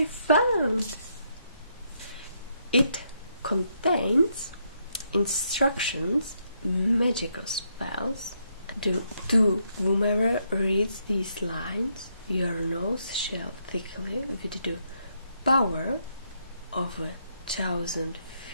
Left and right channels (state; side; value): inverted; both; correlation -0.76